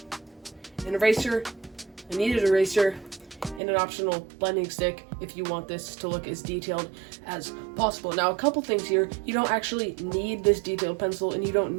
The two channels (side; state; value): left; drops out; at 3.6 s